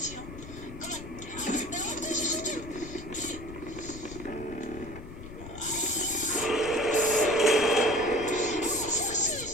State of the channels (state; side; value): noise; left; rumble, 12 dB below the sound